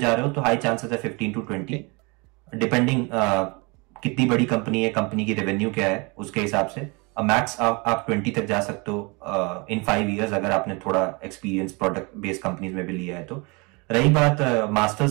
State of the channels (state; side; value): quieter; left; 28.8 dB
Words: रहे हो तो हाई चांसेस है 15 to 20, डिपेंडिंग कितनी बड़ी कंपनी है, कंपनी की रेवेन्यू क्या है उसके हिसाब से। मैक्स आप 20 तक जा सकते हो इन 5 इयर्स अगर आपने थोड़ा एक्सपीरियंस प्रोडक्ट बेस्ड कंपनीज में भी लिया है तो। रही बात